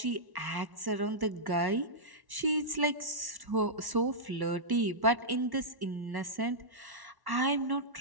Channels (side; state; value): left; late; 1.1 ms